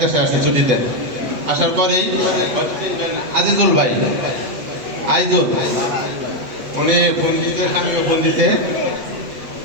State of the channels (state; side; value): late; left; 8.1 ms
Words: দেশে আসছি ছুটিতে। আসার পরেই আজিজুল ভাই আইজুল উনি ফোন দিতে, স্বামীকে ফোন দিতে